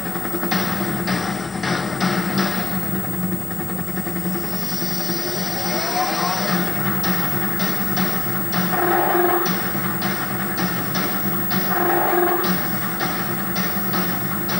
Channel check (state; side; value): quieter; right; 3.9 dB